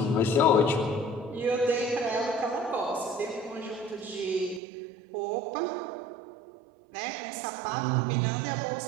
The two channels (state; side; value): drops out; left; at 4.6 s